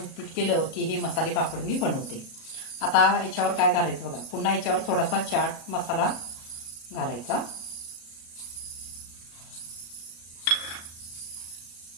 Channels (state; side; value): late; right; 37 ms